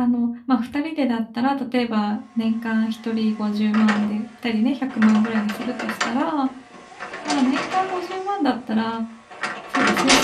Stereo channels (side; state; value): both; identical; correlation 1.00